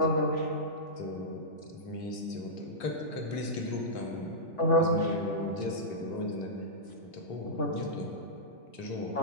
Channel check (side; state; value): right; late; 3.4 ms